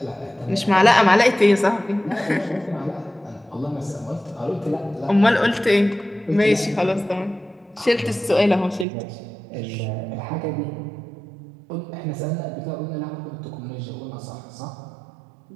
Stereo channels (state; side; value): drops out; left; at 8.8 s